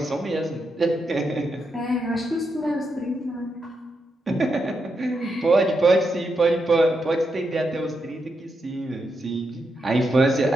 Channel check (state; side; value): normal; both; correlation 0.83